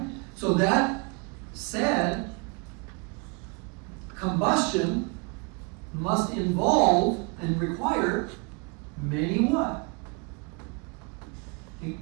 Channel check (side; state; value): left; quieter; 32.1 dB